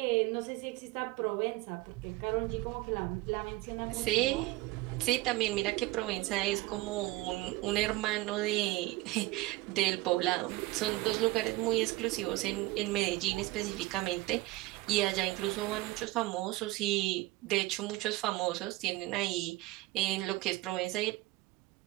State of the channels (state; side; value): quieter; left; 19.6 dB